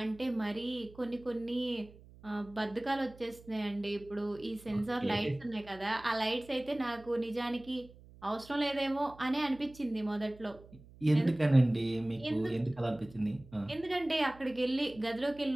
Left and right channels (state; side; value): noise; right; hum, 22 dB below the sound